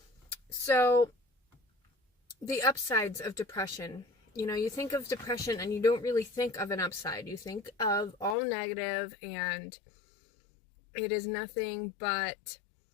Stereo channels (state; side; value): drops out; right; at 8.3 s